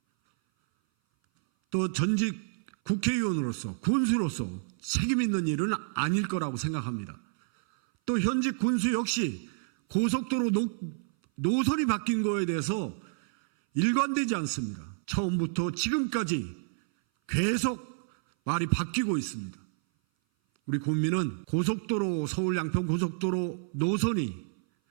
또 전직 국회의원으로서, 군수로서 책임 있는 일은 아닐 거라고 생각합니다. 또 현직 군수 역시 고속도로 노선이 바뀐 거에 대해서 일관되지 않습니다. 처음부터 지금까지 계속 말이 바뀌고 있습니다. 우리 국민은 고속도로, 서울 양평 고속도로 노선이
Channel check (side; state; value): left; silent; 57 dB below the other